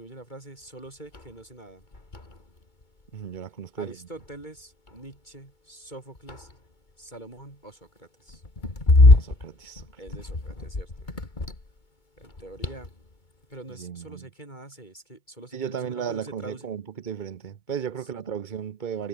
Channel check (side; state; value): right; late; 2.2 ms